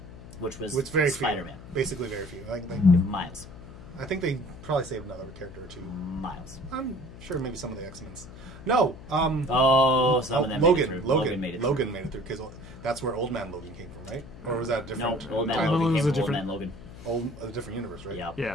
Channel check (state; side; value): noise; left; hum, 15 dB below the sound